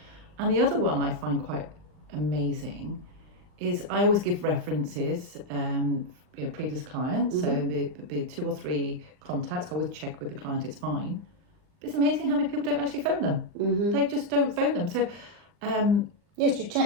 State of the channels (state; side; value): late; left; 39 ms